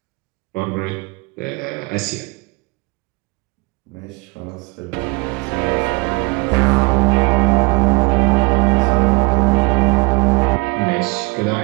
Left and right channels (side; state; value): left; quieter; 27.7 dB